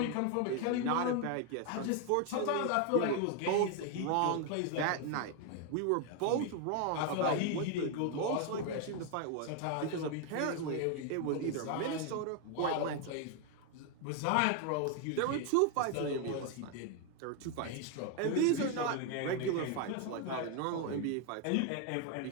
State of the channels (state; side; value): different; both; correlation 0.01